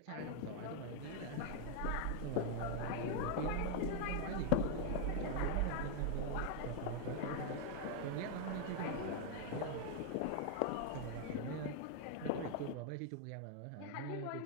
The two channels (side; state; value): both; different; correlation 0.00